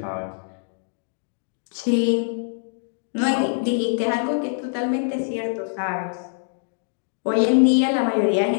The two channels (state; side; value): silent; right; digital silence